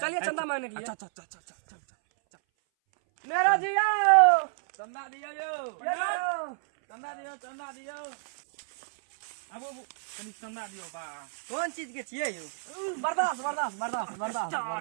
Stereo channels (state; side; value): silent; left; 58 dB below the other